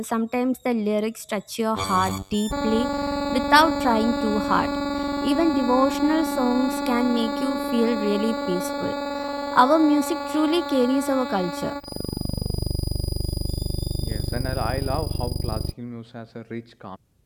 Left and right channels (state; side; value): identical; both; correlation 1.00